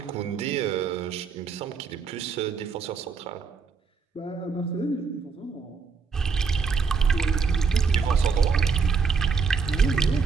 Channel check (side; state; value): left; quieter; 5.4 dB